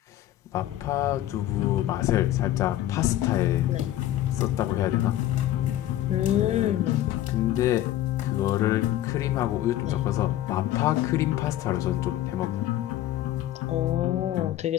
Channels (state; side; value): quieter; right; 13.5 dB